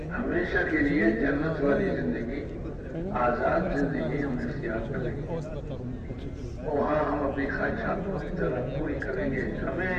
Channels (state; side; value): identical; both; correlation 1.00